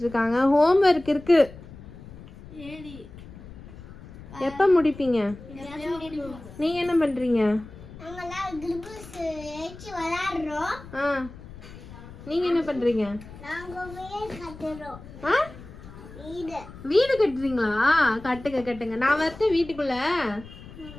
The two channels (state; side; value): noise; left; rumble, 16 dB below the sound